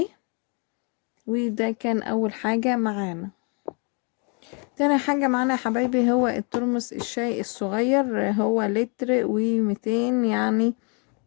وده كان اول حاجة معانا. تاني حاجة معانا يا حبايبي هو الترمس الشاي الصغير. هو لتر و200 يعني.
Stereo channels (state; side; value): quieter; right; 36.2 dB